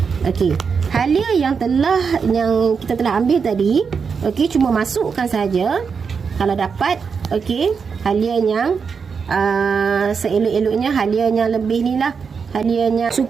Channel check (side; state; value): left; quieter; 5.8 dB